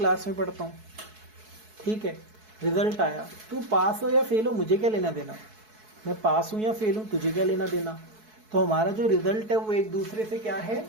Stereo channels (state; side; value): late; left; 4.6 ms